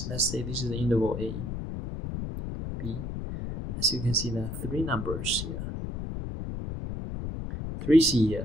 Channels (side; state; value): left; noise; rumble, 5 dB below the sound